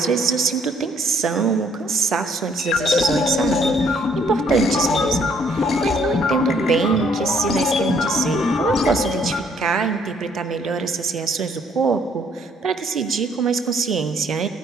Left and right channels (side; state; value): both; normal; correlation 0.65